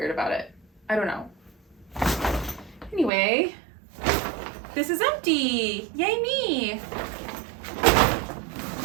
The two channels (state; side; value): drops out; left; at 3.1 s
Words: about it. I don't know. Anyway, this is empty. Yay me.